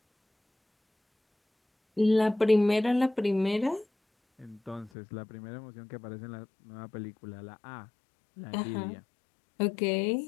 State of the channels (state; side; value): drops out; right; at 4.9 s